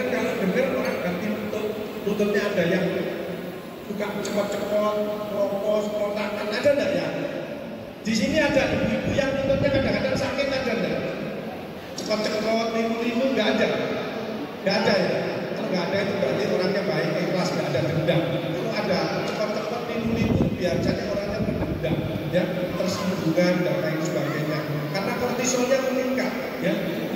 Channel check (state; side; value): identical; both; correlation 1.00